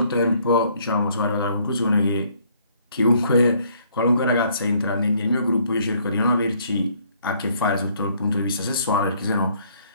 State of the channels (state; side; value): inverted; both; correlation -0.64